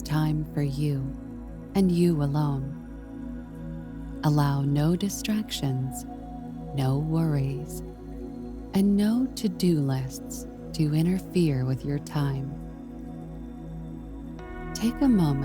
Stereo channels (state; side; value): identical; both; correlation 1.00